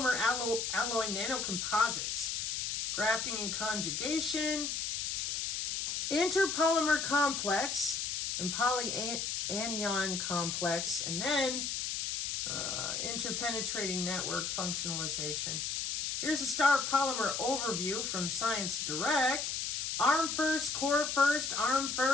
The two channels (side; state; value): left; noise; hiss, 1 dB below the sound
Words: alloy nanocomposites, grafting and conjugation, interpolymer complex, and polyanion complex, and then interpenetrating network functionalization. Here's a star polymer overview from Science Direct. Arm first, core first, arm